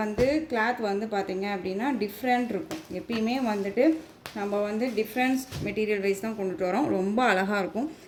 வந்து கிளாத் வந்து பார்த்திங்க அப்படின்னா டிஃப்ரெண்ட் இருக்கும். எப்பயுமே வந்துட்டு நம்ம வந்து டிஃப்ரென்ஸ் மெட்டீரியல் வைஸ் தான் கொண்டுட்டு வரோம், ரொம்ப அழகாக இருக்கும்.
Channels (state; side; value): identical; both; correlation 1.00